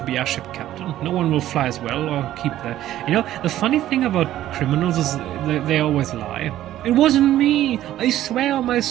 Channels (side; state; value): left; quieter; 13.2 dB